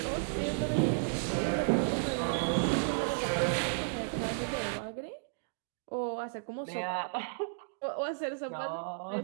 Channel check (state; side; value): silent; left; digital silence